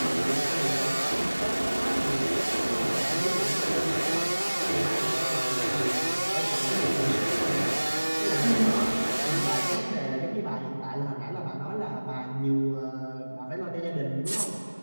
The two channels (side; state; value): both; inverted; correlation -1.00